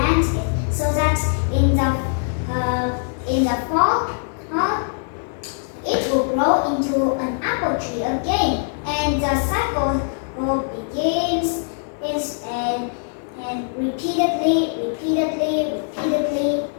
it so that in the fall, it will grow into an apple. apple tree again, and the cycle begins and repeatedly,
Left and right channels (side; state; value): right; silent; digital silence